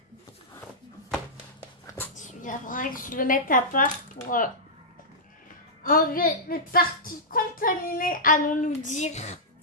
Il faudrait que je le mette à part pour enlever les parties contaminées, allons-nous dire.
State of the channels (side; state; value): both; normal; correlation -0.12